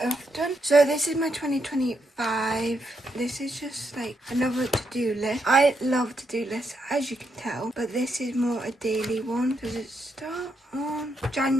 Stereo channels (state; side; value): normal; both; correlation 0.80